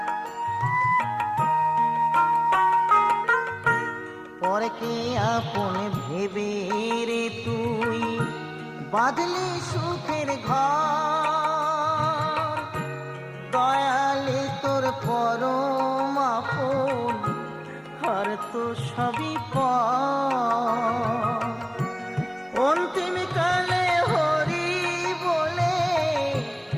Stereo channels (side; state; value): both; identical; correlation 1.00